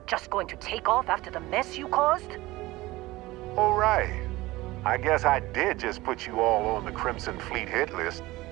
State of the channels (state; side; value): quieter; left; 19.2 dB